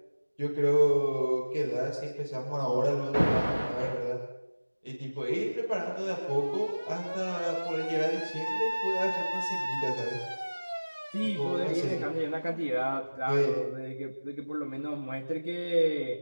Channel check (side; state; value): both; inverted; correlation -1.00